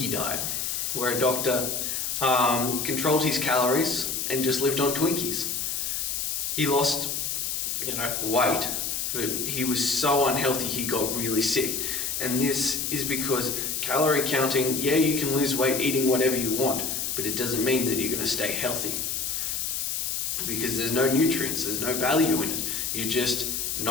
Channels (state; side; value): noise; left; hiss, 1 dB below the sound